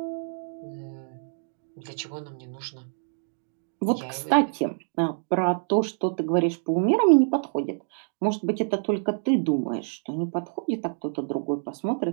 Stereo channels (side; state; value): left; silent; digital silence